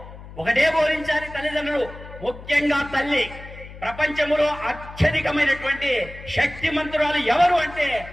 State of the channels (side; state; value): left; noise; hum, 16 dB below the sound